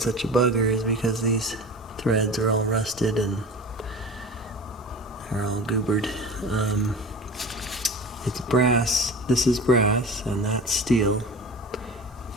a bugger is because these threads are all rusted and they're all goobered. It's brass, this is brass, and that's steel.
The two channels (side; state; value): both; normal; correlation 0.34